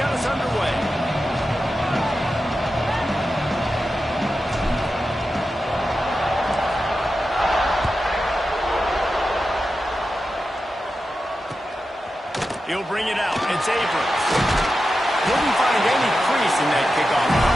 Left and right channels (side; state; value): both; normal; correlation 0.91